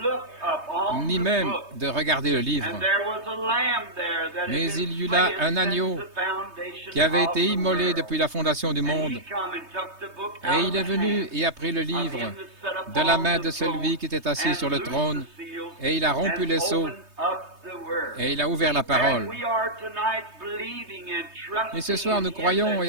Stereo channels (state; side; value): late; left; 3.2 ms